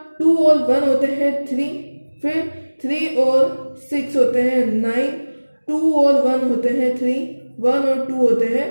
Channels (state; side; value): inverted; both; correlation -1.00